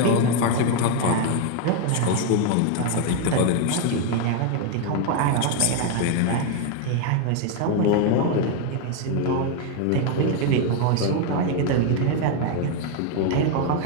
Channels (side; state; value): both; different; correlation 0.01